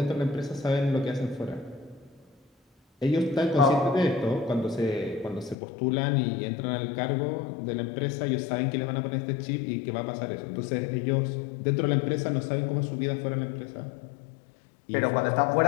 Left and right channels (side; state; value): right; drops out; at 5.6 s